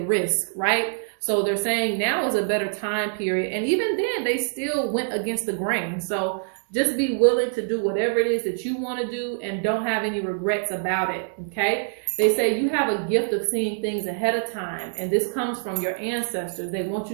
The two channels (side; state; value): left; silent; digital silence